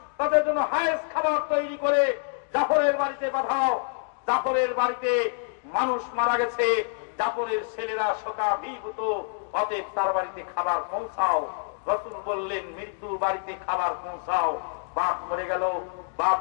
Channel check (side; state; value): right; silent; digital silence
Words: তাদের জন্য হায়েস খাবার তৈরি করে জাফরের বাড়িতে পাঠাও। জাফরের বাড়িতে মানুষ মারা গেছে, জাফরের ছেলেরা শোকাভিভূত, অতএব তার বাড়িতে খাবার পৌঁছাও। রাসূল বললেন মৃত্যুর বাড়িতে খাবার পৌঁছাও। বাপ মরে গেল, বাপ